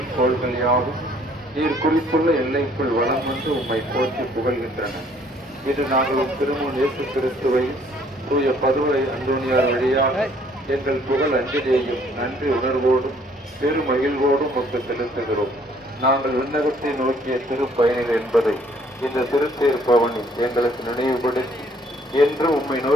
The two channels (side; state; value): both; normal; correlation 0.61